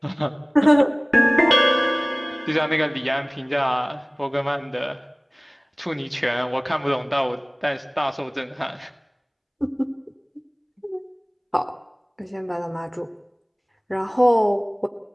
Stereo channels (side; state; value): both; identical; correlation 1.00